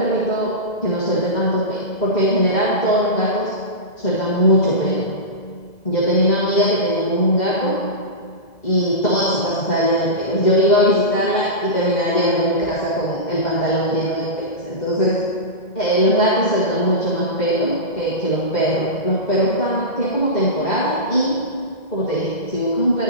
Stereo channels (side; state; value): right; late; 2.0 ms